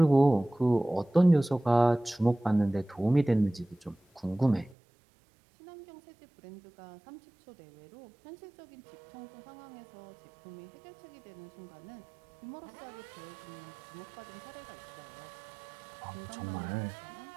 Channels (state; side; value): drops out; left; at 4.8 s